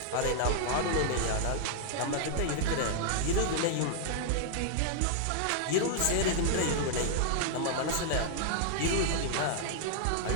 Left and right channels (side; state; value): both; different; correlation -0.01